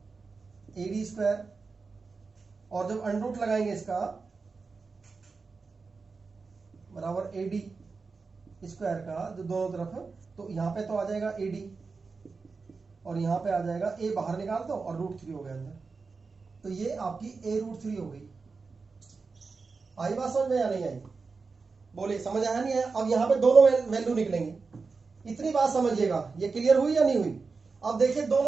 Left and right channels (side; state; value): left; quieter; 4.5 dB